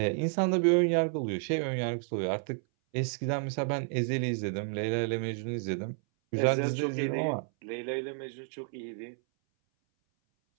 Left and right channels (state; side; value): silent; left; 57 dB below the other